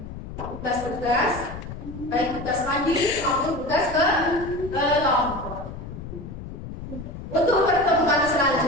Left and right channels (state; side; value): noise; left; rumble, 10 dB below the sound